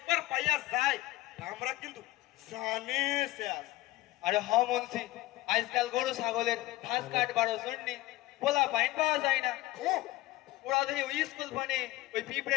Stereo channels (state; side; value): quieter; right; 17.7 dB